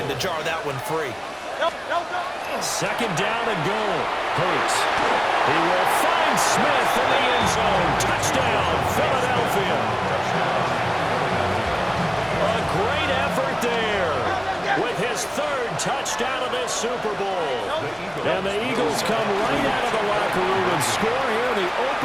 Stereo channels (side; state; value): both; identical; correlation 1.00